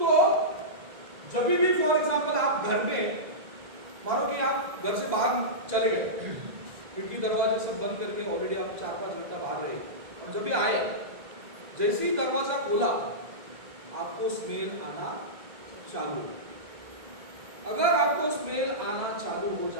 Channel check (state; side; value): late; left; 2.0 ms